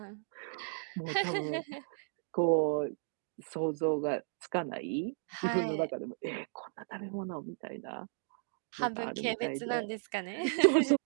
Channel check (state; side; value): silent; left; digital silence